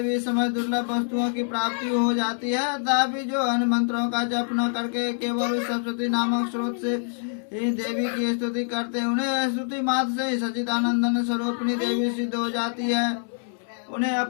भी समय दुर्लभ वस्तुओं की प्राप्ति हो जाती है। तथापि जो अन्य मंत्रों का जप न करके केवल उस सप्तशती नामक स्रोत से ही देवी की स्तुति करते हैं, उन्हें स्तुति मात्र से ही सच्चिदानंदन स्वरूपिणी देवी सिद्ध हो जाती है। उन्हें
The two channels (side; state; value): right; silent; 61 dB below the other